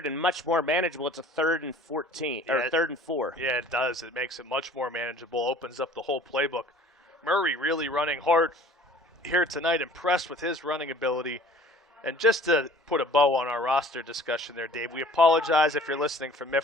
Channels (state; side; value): normal; both; correlation 0.50